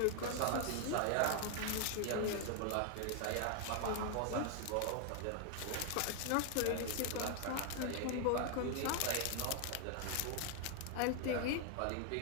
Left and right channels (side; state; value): both; different; correlation 0.00